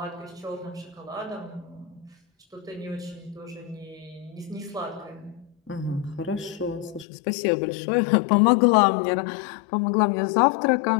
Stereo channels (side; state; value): right; drops out; at 7.1 s